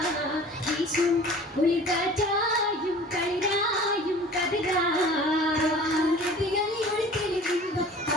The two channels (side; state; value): both; normal; correlation 0.44